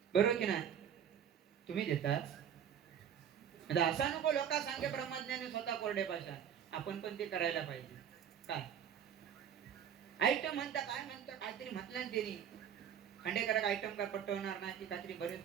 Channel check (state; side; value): quieter; left; 8.8 dB